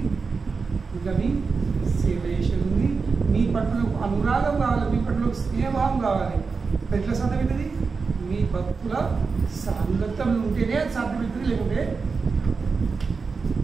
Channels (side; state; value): left; quieter; 4.8 dB